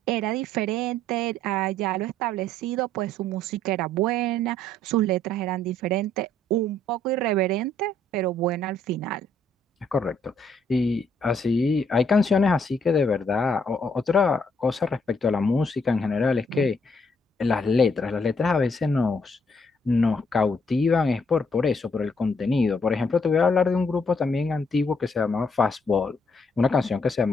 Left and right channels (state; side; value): normal; both; correlation 0.69